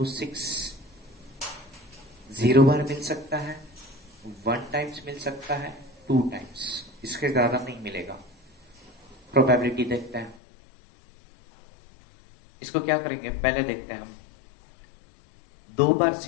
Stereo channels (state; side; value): drops out; right; at 10.4 s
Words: 6 0 बार मिल सकता है, 1 टाइम्स मिल सकता है, 2 टाइम्स. इसके ज्यादा नहीं मिलेगा. प्रोबेबिलिटी देखते हैं. इसको क्या करेंगे, पहले देखते हैं हम. 2 बार